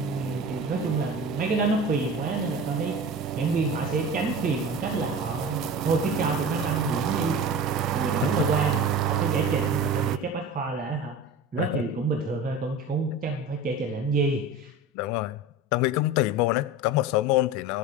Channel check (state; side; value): normal; both; correlation 0.32